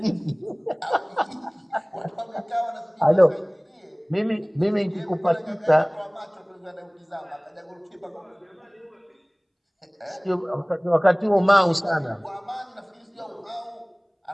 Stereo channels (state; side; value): identical; both; correlation 1.00